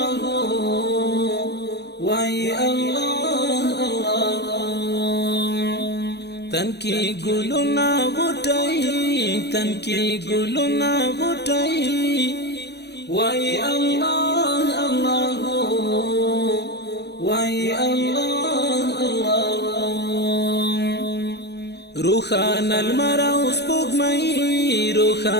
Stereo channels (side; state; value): right; late; 0.49 ms